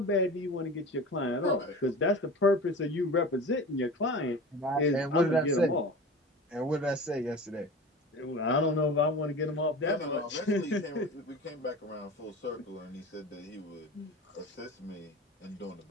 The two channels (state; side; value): normal; both; correlation 0.34